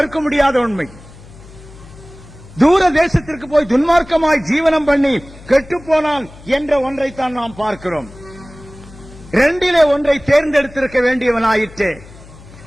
முடியாத உண்மை. தூர தேசத்திற்கு போய் துன்மார்க்கமாய் ஜீவனம் பண்ணி கெட்டு போனான் என்ற ஒன்றைத்தான் நாம் பார்க்கிறோம். ரெண்டிலே ஒன்றை தேர்ந்தெடுத்திருக்க வேண்டியவனாயிற்றே.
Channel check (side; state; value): left; noise; hum, 20 dB below the sound